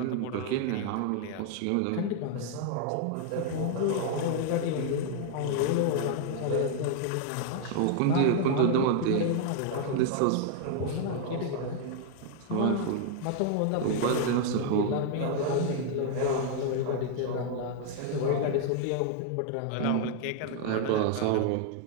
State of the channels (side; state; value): both; different; correlation 0.00